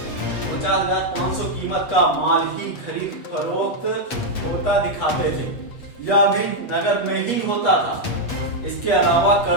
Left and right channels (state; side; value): late; right; 8.2 ms